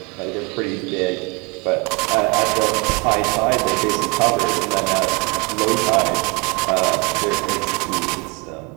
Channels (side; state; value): left; quieter; 29.4 dB